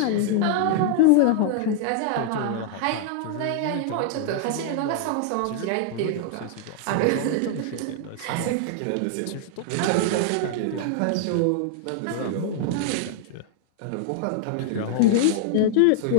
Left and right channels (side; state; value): both; different; correlation 0.00